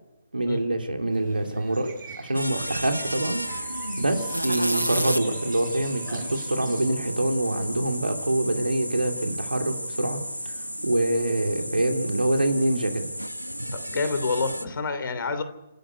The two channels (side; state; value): both; inverted; correlation -0.88